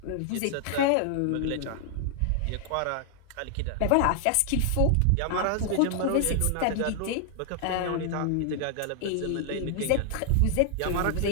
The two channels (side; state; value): both; different; correlation 0.00